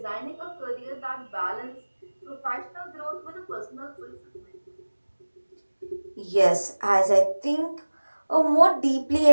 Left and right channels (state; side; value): inverted; both; correlation -1.00